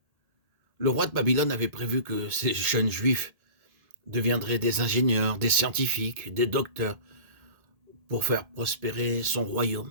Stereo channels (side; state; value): left; late; 1.8 ms